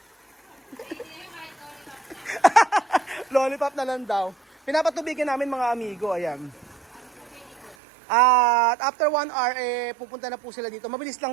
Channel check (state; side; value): drops out; left; at 7.8 s